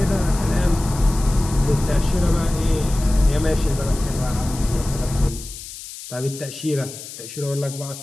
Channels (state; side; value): noise; left; hiss, 13 dB below the sound